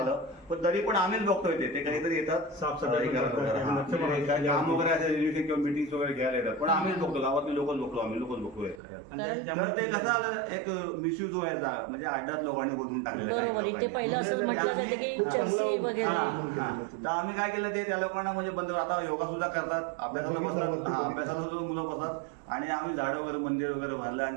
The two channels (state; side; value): drops out; left; at 8.8 s